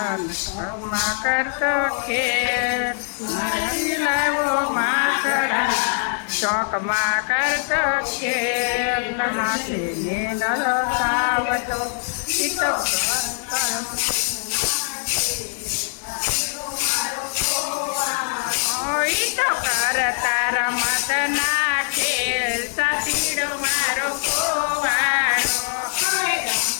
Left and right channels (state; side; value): silent; right; digital silence